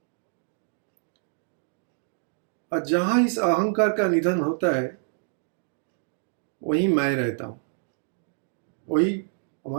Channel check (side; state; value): left; silent; digital silence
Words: और जहां इस अहंकार का निधन होता है वहीं मैं रहता हूं, वही